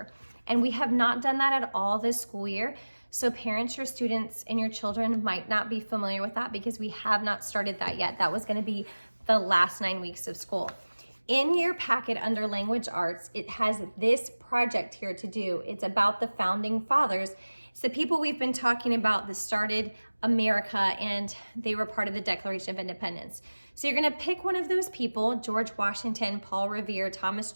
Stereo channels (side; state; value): both; inverted; correlation -1.00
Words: and we have not done that at all this school year. So parents, your students, and your children might not be familiar with that because we have not started that yet. That was going to be the last 9 weeks of school. In your packet under language arts, it has this project here to do. It's about the founding fathers. It's the people we've been talking about that started America, and they were part of the Declaration of Independence. So you're gonna pick one of those people: George Washington, Paul Revere, Thomas